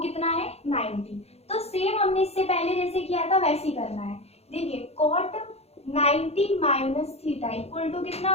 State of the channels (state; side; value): late; right; 0.30 ms